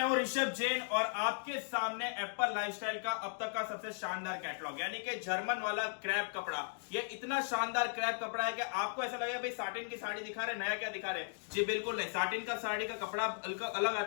हूं ऋषभ जैन और आपके सामने एप्पल लाइफस्टाइल का अब तक का सबसे शानदार कैटलॉग यानी कि जर्मन वाला क्रैप कपड़ा। ये इतना शानदार क्रैप कपड़ा है कि आपको ऐसा लगेगा भाई साटिन की साड़ी दिखा रहे, नया क्या दिखा रहे। जी बिल्कुल नहीं, साटिन का साड़ी का कपड़ा अलग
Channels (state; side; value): silent; right; digital silence